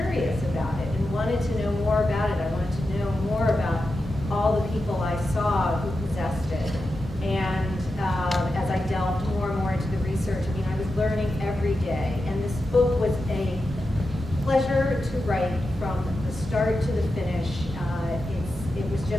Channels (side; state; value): both; normal; correlation 0.90